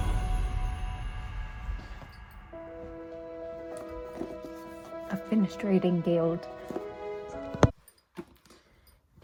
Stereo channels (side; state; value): both; identical; correlation 1.00